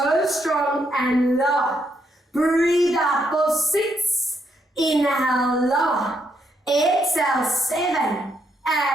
strong and lower. Breathe out for 6. Inhale, lower. Exhale, 7.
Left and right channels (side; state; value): both; normal; correlation 0.76